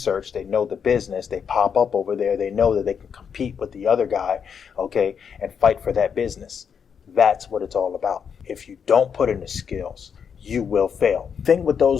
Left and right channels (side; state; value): right; quieter; 7.0 dB